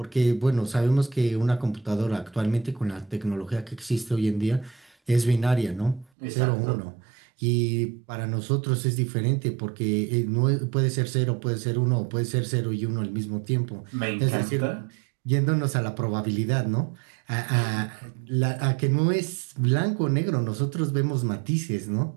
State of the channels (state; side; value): drops out; left; at 6.1 s